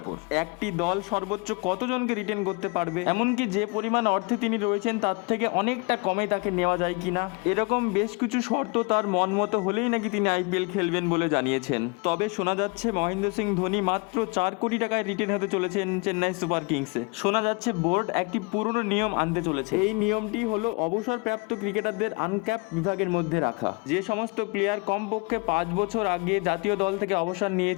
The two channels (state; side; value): quieter; right; 29.6 dB